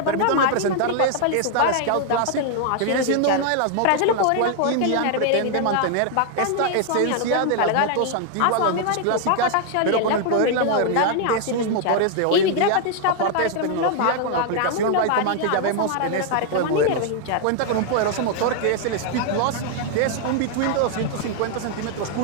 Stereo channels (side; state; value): both; different; correlation 0.00